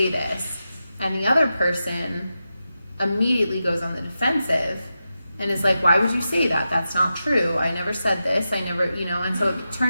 this. And the other person immediately goes on the defensive and is like, why would you say that? That's not true. I never said this. I never, and so it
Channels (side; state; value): both; inverted; correlation -0.90